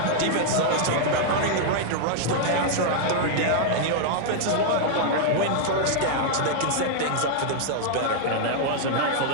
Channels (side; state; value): both; different; correlation -0.01